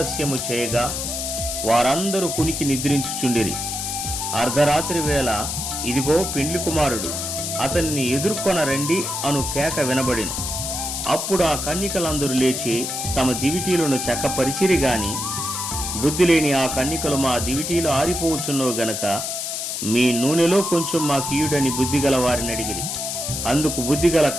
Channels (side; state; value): left; noise; hiss, 3 dB below the sound